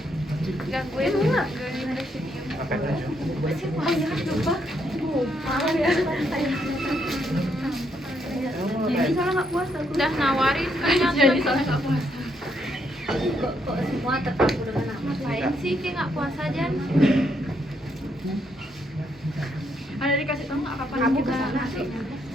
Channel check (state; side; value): normal; both; correlation 0.75